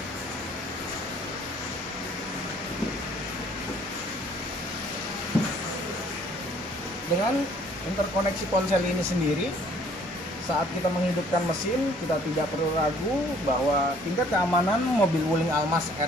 Dengan interkoneksi ponsel ini sendiri, saat kita menghidupkan mesin, kita tidak perlu ragu bahwa tingkat keamanan mobil Wuling Almas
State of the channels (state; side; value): normal; both; correlation 0.59